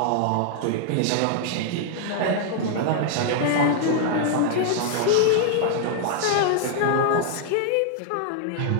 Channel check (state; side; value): different; both; correlation -0.01